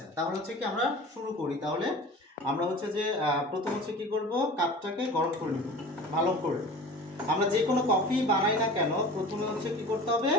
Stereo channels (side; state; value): both; normal; correlation 0.38